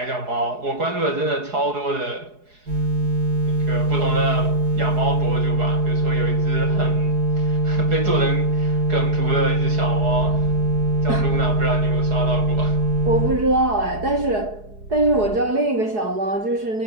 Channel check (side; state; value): left; late; 4.7 ms